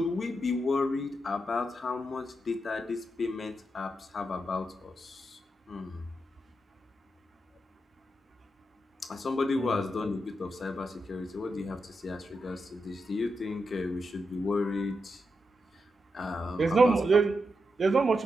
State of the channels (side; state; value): both; normal; correlation 0.86